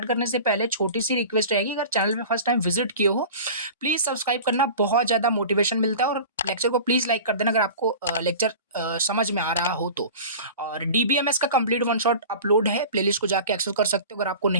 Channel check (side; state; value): both; inverted; correlation -0.37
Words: करने से पहले छोटी सी रिक्वेस्ट रहेगी, अगर चैनल पे फर्स्ट टाइम विजिट किए हो प्लीज सब्सक्राइब करना, बहुत ज्यादा मोटिवेशन मिलता है। और लेक्चर को प्लीज लाइक कर देना अगर आपको लेक्चर समझ में आ रहा हो तो। और DBMS का कंप्लीट वन शॉट अपलोड है, प्लेलिस्ट को जाके एक्सेस कर सकते हो। अगर आपको